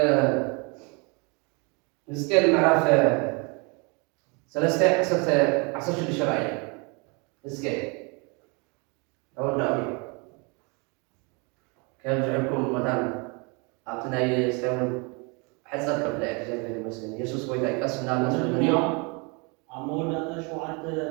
نسكيل معرف سلسة عصر الشرعية اسكي أول دعوي كان جعلكم مثلا أعطنا يستوون حسب قبل زي المسلمين يسوس ويدا يقسمنا المسلمين أمور هذا شو عاد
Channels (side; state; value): left; quieter; 31.3 dB